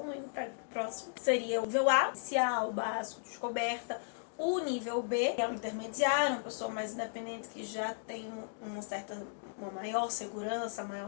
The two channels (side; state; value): right; silent; digital silence